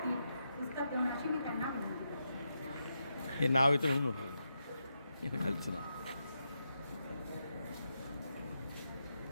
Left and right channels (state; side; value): inverted; both; correlation -0.85